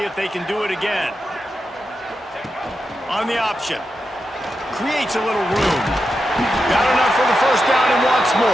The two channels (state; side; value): normal; both; correlation 0.88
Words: if they can do it again. On the option. Creates a little room. Got enough for the 1st down and wants